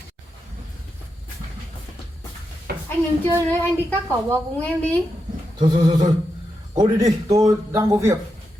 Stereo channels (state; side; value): normal; both; correlation 0.86